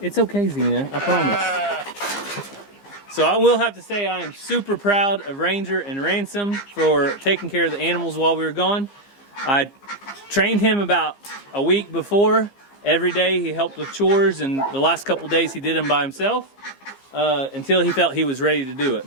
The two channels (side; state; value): right; late; 15 ms